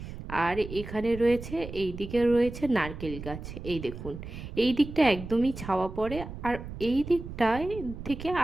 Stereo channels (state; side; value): noise; right; rumble, 10 dB below the sound